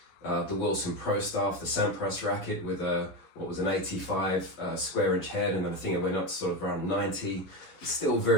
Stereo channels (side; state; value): right; late; 11 ms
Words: the Wilson Pro Staff, the Sampras racket, with an 85 square inch head, and then I think it went up to sort of around 90, still